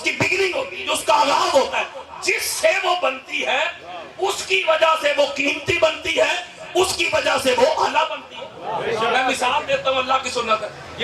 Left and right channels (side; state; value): both; identical; correlation 1.00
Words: کی بگننگ ہوتی ہے, جو اس کا آغاز ہوتا ہے, جس سے وہ بنتی ہے اس کی وجہ سے وہ قیمتی بنتی ہے, اس کی وجہ سے وہ اعلیٰ بنتی ہے. میں مثال دیتا ہوں, اللہ کی سنت ہے.